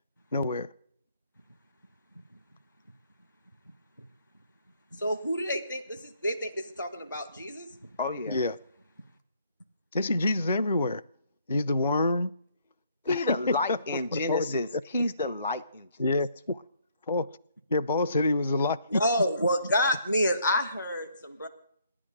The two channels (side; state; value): both; inverted; correlation -0.66